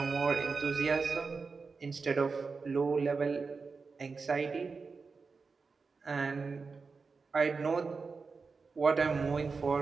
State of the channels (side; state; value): left; quieter; 4.6 dB